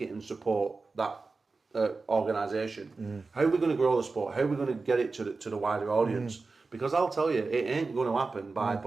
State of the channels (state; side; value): quieter; left; 4.0 dB